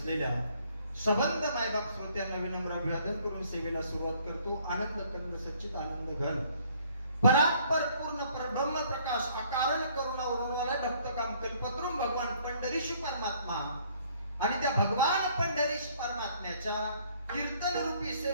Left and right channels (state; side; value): inverted; both; correlation -0.62